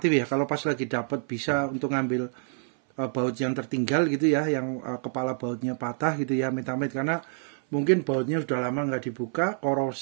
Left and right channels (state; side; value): silent; left; 57 dB below the other